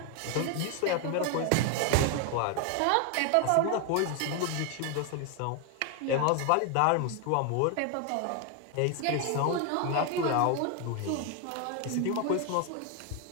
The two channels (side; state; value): both; different; correlation 0.01